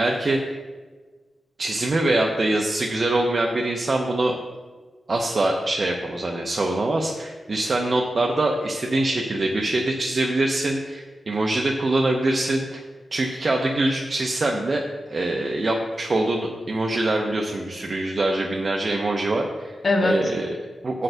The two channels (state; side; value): normal; both; correlation 0.91